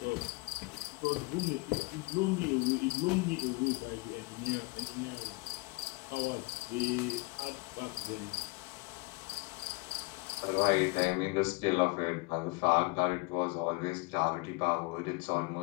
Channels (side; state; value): right; quieter; 26.3 dB